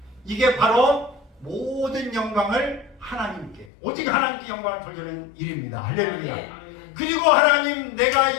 이게 바로 모든 영광을 하나님께, 오직 하나님께 영광을 돌리는 일입니다. 할렐루야. 그리고 하나님 내가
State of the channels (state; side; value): drops out; right; at 3.7 s